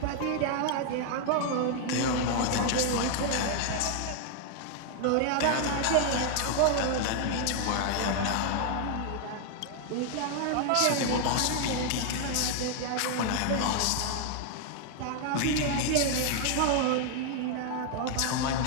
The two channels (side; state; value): both; different; correlation 0.00